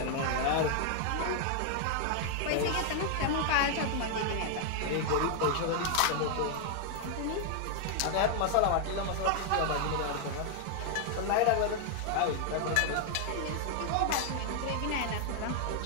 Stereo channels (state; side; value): different; both; correlation 0.00